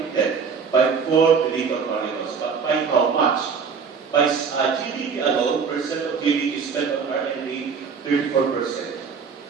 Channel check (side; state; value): left; quieter; 5.8 dB